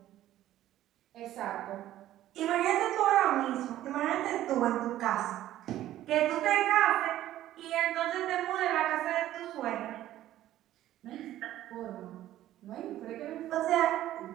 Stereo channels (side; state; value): left; quieter; 13.5 dB